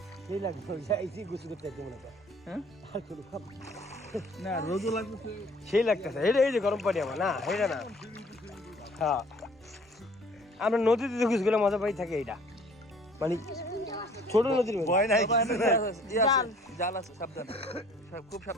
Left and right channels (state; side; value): normal; both; correlation 0.54